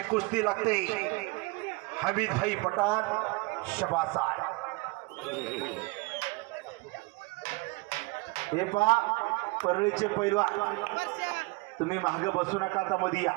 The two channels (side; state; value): left; quieter; 25.9 dB